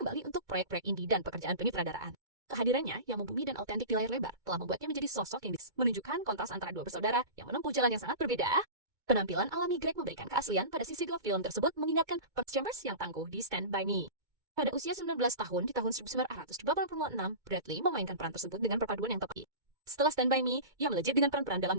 kembali untuk proyek-proyek indie dan pekerjaan penyutradaraan. Kehadirannya yang membumi dan autentik di layar lebar telah membuatnya menjadi sosok yang menunjukkan kontras antara dua bersaudara yang menempuh jalan yang sangat berbeda. Penampilan alami Greg memberikan keaslian pada sisi gelap film tersebut, mengingatkan Perks Chambers yang tangguh di Stand By Me. Pada usia 19 tahun di tahun 1986, Bradley memainkan peran tersebut dengan perpaduan yang tepat. Setelah Stand By Me, ia melejit dengan peran-peran dalam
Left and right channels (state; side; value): late; left; 2.2 ms